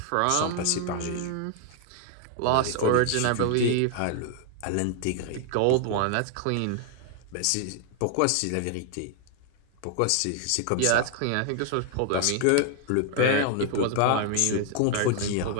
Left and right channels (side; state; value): both; different; correlation 0.00